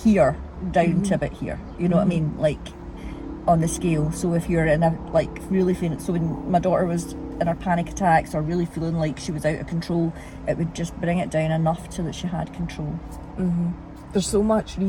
down to about here, you know what I mean, like on the scale. So if you're in a like really feeling, so when my daughter was in her panic attacks or really feeling like she was out of control, it would just bring it down enough so that she had control. There's so much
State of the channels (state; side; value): identical; both; correlation 1.00